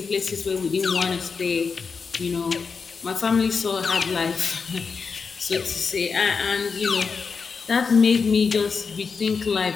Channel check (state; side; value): quieter; right; 5.3 dB